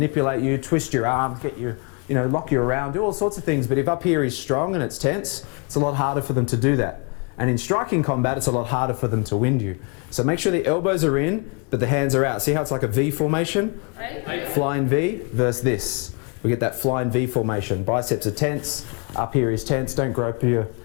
you, twist your arms, get you, lock you around, do all sorts of things. But if up here is strong and it's tense, it's a lot harder for them to do that. And in striking combat, it's a lot harder for them to wind you. So make sure the elbows are in, but the hands are out. See how it's like a V formation? Flying V versus this. We get that flying V formation. Biceps are tense, up here is tense. Don't grope your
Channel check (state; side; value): quieter; right; 33.6 dB